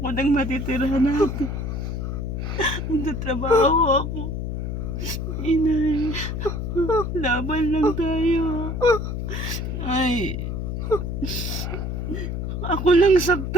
ng matitira natin. Magtatrabaho ako. Inay, laban lang tayo. Ay, ako lang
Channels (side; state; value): left; noise; hum, 3 dB below the sound